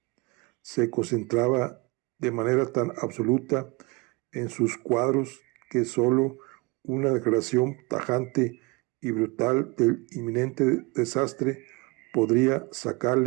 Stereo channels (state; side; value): quieter; left; 26.6 dB